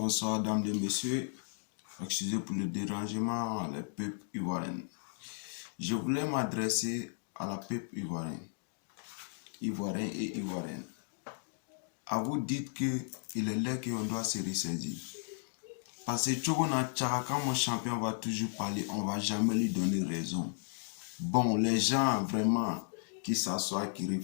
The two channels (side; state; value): right; silent; digital silence